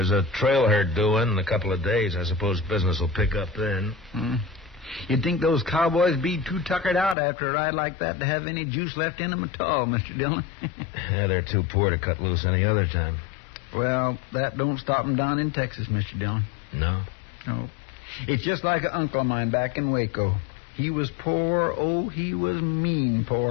a trail herd due in a couple of days. I suppose business will pick up then. You'd think those cowboys be too tuckered out after a ride like that to have any juice left in them at all, Mr. Dillon. Yeah, they're too poor to cut loose any other time. Well, that don't stop them down in Texas, Mr. Dillon. No? No. It's just like an uncle of mine back in Waco. He was poor, oh, he was mean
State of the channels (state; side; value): drops out; right; at 7.2 s